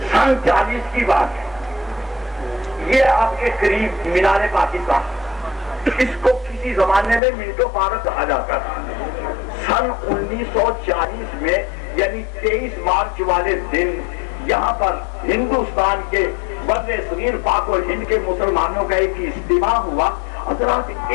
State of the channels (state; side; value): drops out; right; at 7.2 s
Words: سن 40 کی بات ہے. یہ آپ کے قریب مینار پاکستان، اس کو کسی زمانے میں منٹو پارک کہا جاتا تھا. سن 1940 میں یعنی 23 مارچ والے دن یہاں پر ہندوستان کے بر صغیر پاک و ہند کے مسلمانوں کا ایک اجتماع ہوا. حضرات